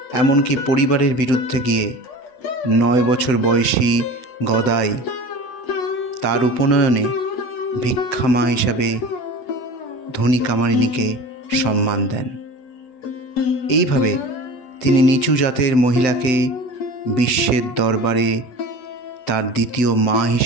এমনকি পরিবারের বিরুদ্ধে গিয়ে 9 বছর বয়সী গদাই তার উপনয়নে ভিক্ষামা হিসাবে ধনী কামারিনীকে সম্মান দেন। এইভাবে তিনি নিচু জাতের মহিলাকে বিশ্বের দরবারে তার দ্বিতীয় মা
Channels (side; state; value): right; late; 7.8 ms